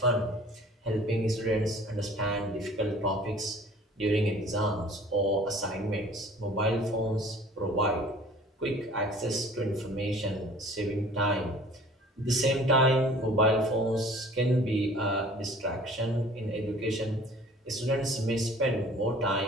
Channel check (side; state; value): both; normal; correlation 0.49